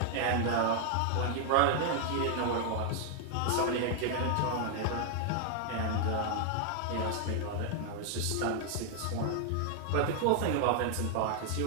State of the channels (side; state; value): both; different; correlation 0.00